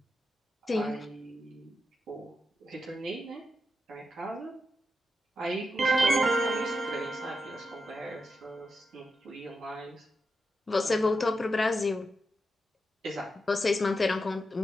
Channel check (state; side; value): normal; both; correlation 0.88